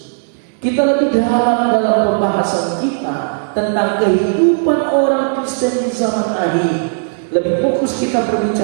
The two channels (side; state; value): left; silent; digital silence